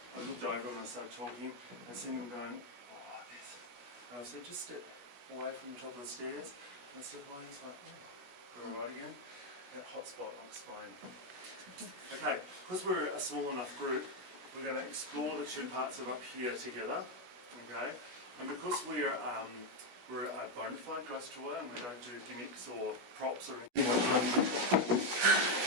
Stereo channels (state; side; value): late; left; 16 ms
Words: I looked over and I started talking and seen them going, oh, this. And I said, just step away from the top of the stairs. And I stepped away and I was like, oh, we're all right again. That hot spot, I'll explain. Okay, because we're a small enough group, we're going to explore the two parts of up here together. Okay, and because we're a bona fide ghost tour and we don't do gimmicks or props or anything like that.